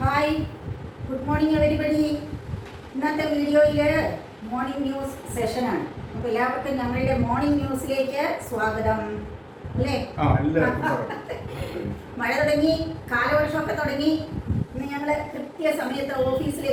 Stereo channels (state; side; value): identical; both; correlation 1.00